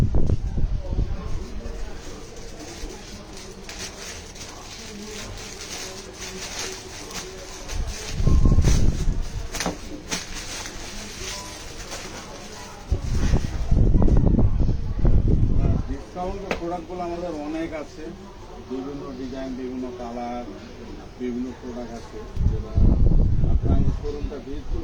ডিসকাউন্টের প্রোডাক্টগুলো আমাদের অনেক আছে, বিভিন্ন ডিজাইন, বিভিন্ন কালার, বিভিন্ন প্রোডাক্ট আছে। যেটা আপনারা আমাদের শোরুমটা ভিজিট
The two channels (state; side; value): identical; both; correlation 1.00